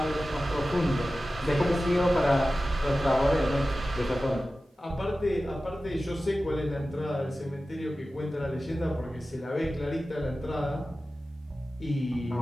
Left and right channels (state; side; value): normal; both; correlation 0.95